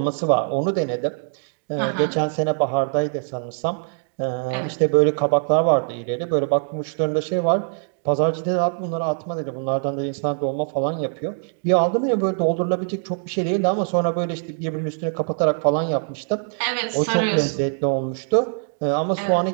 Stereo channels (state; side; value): silent; left; 64 dB below the other